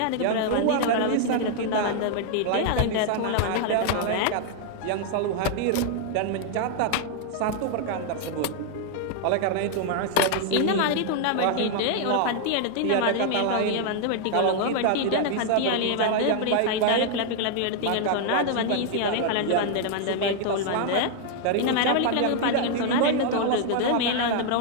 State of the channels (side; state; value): both; different; correlation 0.00